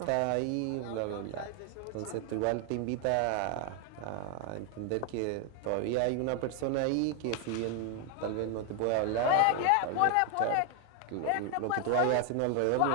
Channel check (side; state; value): both; different; correlation 0.00